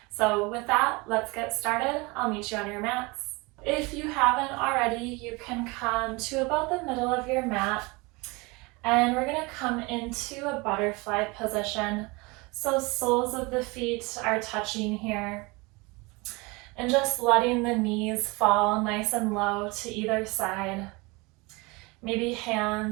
So with that, let's get started. I'll meet you on your mats. If you haven't already, you can come to about the middle of your mat and we're gonna come into a butterfly position. So soles of the feet are touching here and just letting the knees fall nice and low to either side. Maybe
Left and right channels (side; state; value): left; quieter; 25.7 dB